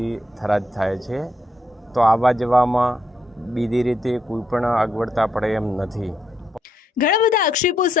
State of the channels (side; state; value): both; normal; correlation 0.76